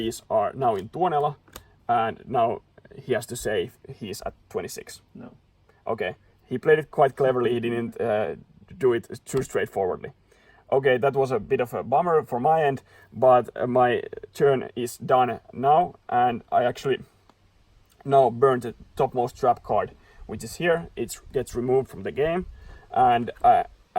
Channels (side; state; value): both; identical; correlation 1.00